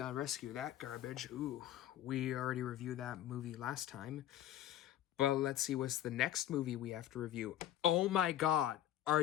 Rescue, that garbage. We already reviewed that movie last time. But let's see what's the next movie we have to review. Oh my god, are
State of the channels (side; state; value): right; quieter; 12.1 dB